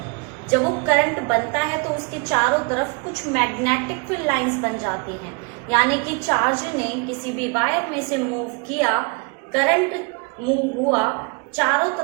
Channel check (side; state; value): left; quieter; 32.6 dB